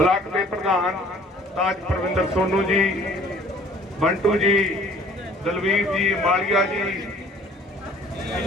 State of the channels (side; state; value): both; normal; correlation 0.54